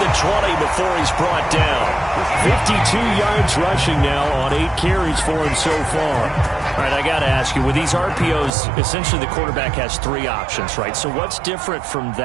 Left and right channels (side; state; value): left; drops out; at 8.5 s